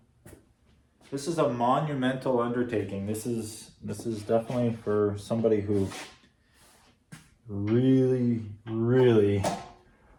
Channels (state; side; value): identical; both; correlation 1.00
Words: This is a monumental undertaking. This is definitely for somebody who really, really